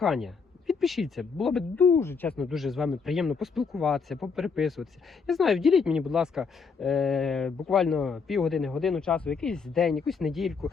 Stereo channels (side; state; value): right; quieter; 5.3 dB